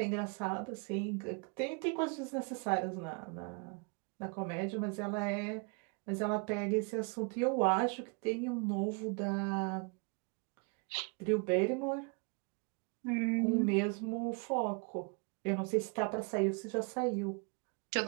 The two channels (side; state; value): left; quieter; 33.6 dB